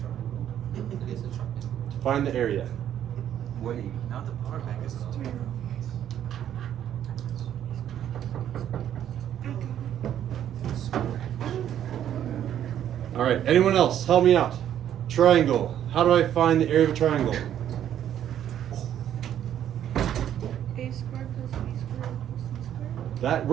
find the area. Wait, not the power bank is All right, anyone else? Help me out. Triangle. How do I find the area of a triangle? A squared plus B squared equals C squared. That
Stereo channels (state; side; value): quieter; left; 10.5 dB